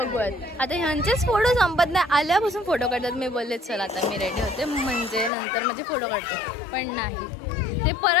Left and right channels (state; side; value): drops out; right; at 5.3 s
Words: आता ह्यांचेच फोटो संपत नाही, आल्यापासून फोटो काढतात. मी बोलले चल आता मी रेडी होते म्हणजे नंतर माझे फोटो काढते, पण नाही, ते